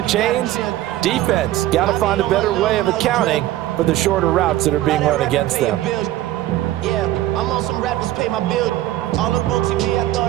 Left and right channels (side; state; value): left; quieter; 14.8 dB